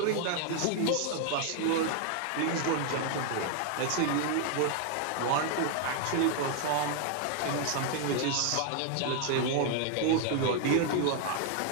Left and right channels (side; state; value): both; different; correlation 0.00